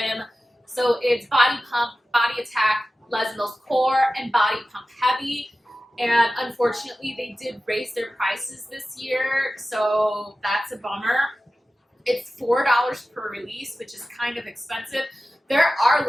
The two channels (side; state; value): both; normal; correlation 0.95